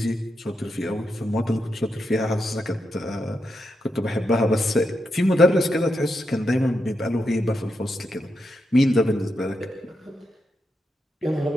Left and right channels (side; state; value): both; normal; correlation 0.85